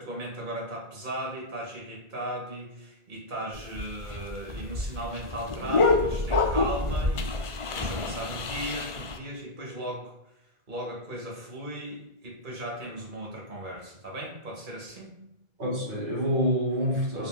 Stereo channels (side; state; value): left; late; 1.5 ms